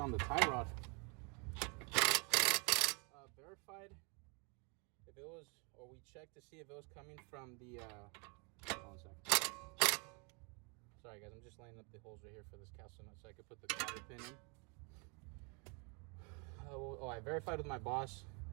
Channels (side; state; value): left; quieter; 33.8 dB